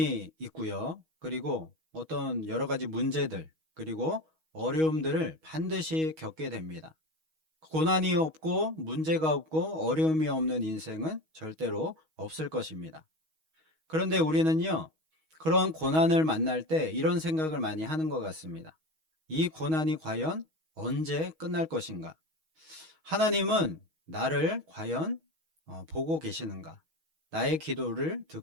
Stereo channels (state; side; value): late; left; 6.3 ms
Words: 있고요. 그리고 어떤 여러 가지 문제들, 그리고 어려움들을 반드시 겪게 됩니다. 고난이 없고 문제가 없고 어려움이 없는 인생은 절대로 없을 것입니다. 그런데 우리는요, 그런 고난을 만날 때 이런 생각을 많이 하는 것 같습니다. 이 고난이 과연 언제 끝날 것인가? 하나님은 나를 과연 보고 계시는가? 나의 기도를